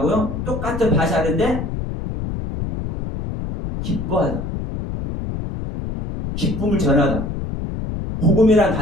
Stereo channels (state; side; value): noise; left; rumble, 5 dB below the sound